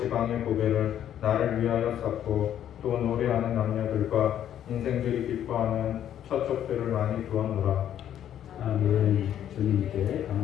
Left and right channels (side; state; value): right; quieter; 10.5 dB